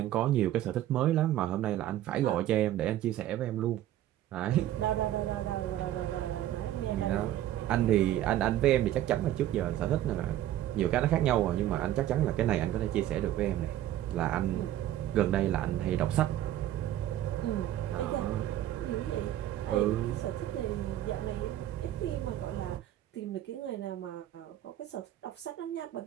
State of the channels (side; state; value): left; quieter; 12.9 dB